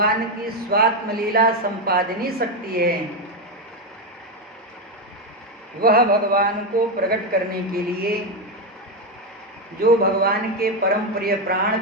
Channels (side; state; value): both; normal; correlation 0.08